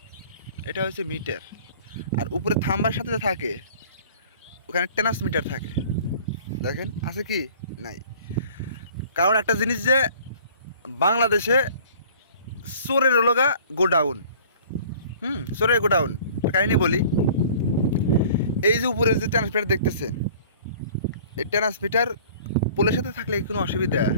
এটা হচ্ছে মিটার। আর উপরে থাম্বার সাথে থাকে, ওখানে ট্রান্সমিটার থাকে। দেখেন আছে কি? নাই। কারণ একটা জিনিস যে বাংলাদেশে চোরের লগা গোডাউন। চোরের গোডাউন। কাহিনী বলি, এই যে উপরে যে ট্রান্সমিটার দেখতেছেন, এই ট্রান্সমিটার পোলের সাথে থাকলে কোনো অসুবিধা?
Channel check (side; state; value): both; inverted; correlation -0.49